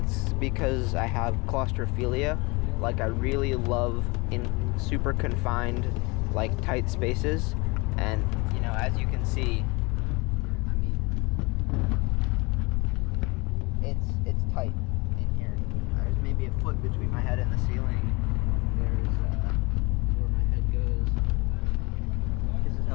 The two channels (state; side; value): quieter; right; 26.4 dB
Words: because I have claustrophilia. Like, I really love in super confined, like, tight spaces. And, you know, as you can see, I mean, it's tight in here. There's maybe a foot between my head and the ceiling. There's where my head goes. This is